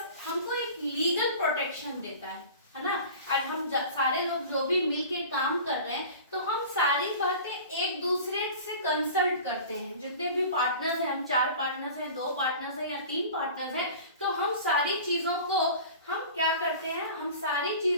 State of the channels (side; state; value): both; inverted; correlation -0.39